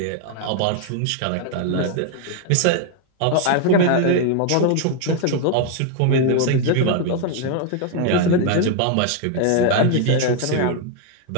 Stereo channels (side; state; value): both; different; correlation 0.00